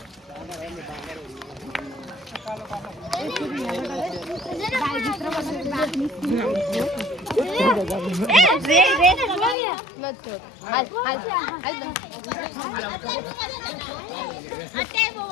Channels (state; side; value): drops out; right; at 9.6 s